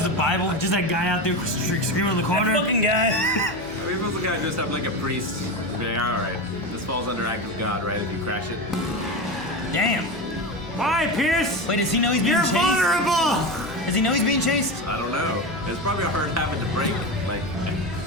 a Bible, just that guy out there screaming in the corner. That fucking guy. I mean, if it was a guy dressed up like a priest, he'd be like, all right, this falls under act of God, right, if you crash it? Damn. Why, Pierce? Wait, does he know he's being chased? You're vulnerable! Does he know he's being chased? I don't know. It's probably a hard habit to break, like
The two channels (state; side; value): noise; left; hum, 22 dB below the sound